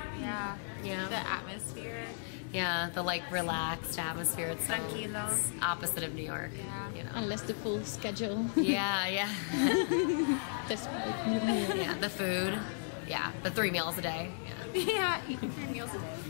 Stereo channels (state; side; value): silent; right; digital silence